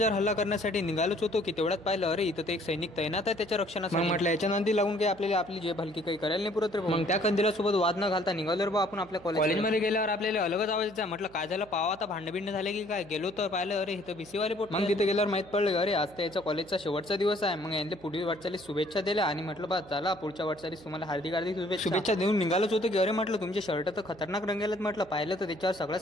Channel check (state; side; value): noise; right; hum, 23 dB below the sound